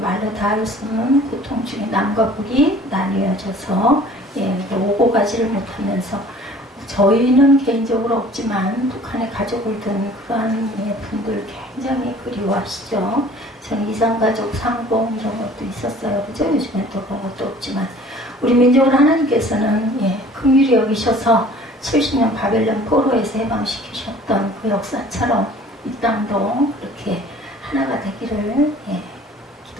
말로 다 할 수 없는 고통 중에 남과 북이 나뉘어져서 오고 가지를 못하면서 저희는 개인적으로 없지만 북한에 가족을 둔 그러한 분들 굉장히 그리워하시죠. 저는 이산가족 상봉 이런 것도 있었어요. 그죠? 요즘엔 또 그런 것도 없지만 우리 민족을 하나님께서는 긍휼히 여기셔서 70년 바벨론 포로에서 해방시키셨던 그 역사처럼 이 땅도 그렇게 하나가 되기를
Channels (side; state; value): both; normal; correlation 0.50